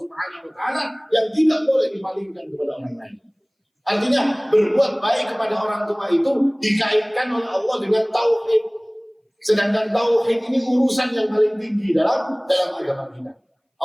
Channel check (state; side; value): identical; both; correlation 1.00